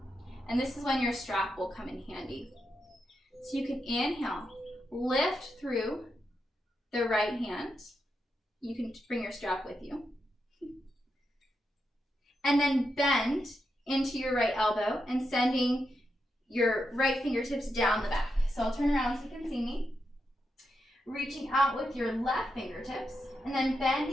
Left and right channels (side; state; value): both; normal; correlation 0.85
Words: And this is when your strap will come in handy. So you can inhale, lift through the right hand. You can bring your strap with you. And then bend into your right elbow and sending your right fingertips down the back. So I'll turn around so you can see me. Reaching out with your left fingertips and then